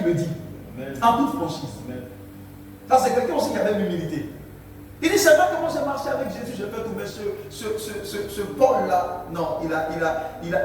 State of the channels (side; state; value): both; identical; correlation 1.00